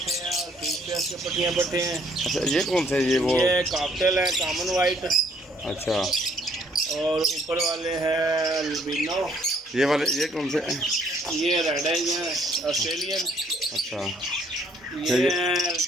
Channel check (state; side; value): normal; both; correlation 0.65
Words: हैं और बीच फेस के पट्टियाँ पट्टे हैं। अच्छा ये कौन से ये वो? ये कॉकटेल है, कॉमन वाइट। अच्छा और ऊपर वाले हैं अल्बिनो। ये वाले ये कौन से हैं? ये रेड आइज हैं, ऑस्ट्रेलियन। अच्छा ये